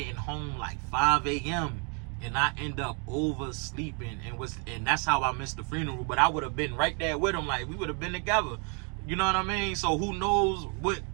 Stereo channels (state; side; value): quieter; left; 37.2 dB